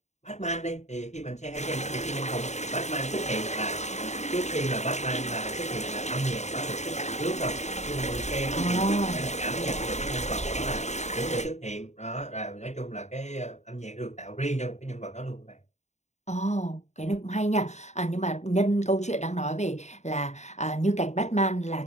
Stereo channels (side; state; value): right; late; 0.33 ms